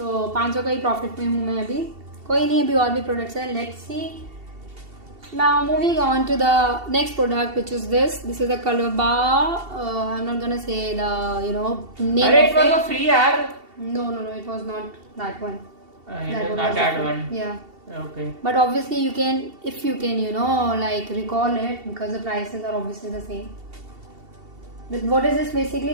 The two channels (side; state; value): left; late; 2.7 ms